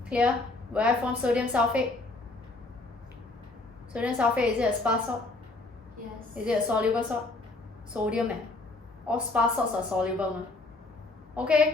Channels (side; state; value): right; quieter; 3.1 dB